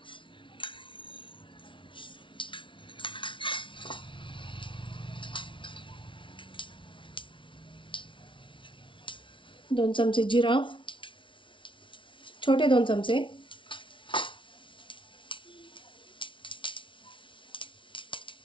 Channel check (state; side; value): late; right; 0.25 ms